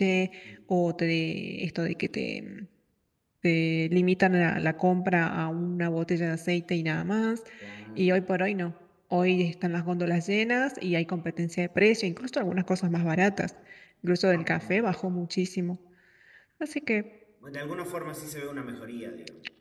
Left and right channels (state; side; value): identical; both; correlation 1.00